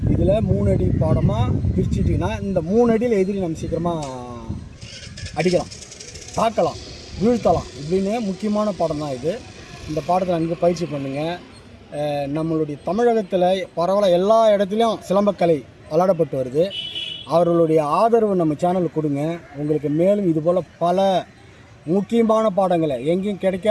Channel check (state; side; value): identical; both; correlation 1.00